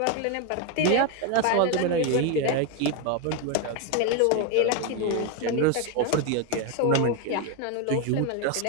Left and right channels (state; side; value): different; both; correlation 0.02